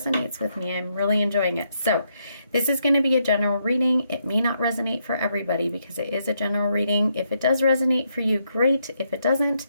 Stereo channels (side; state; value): both; inverted; correlation -0.77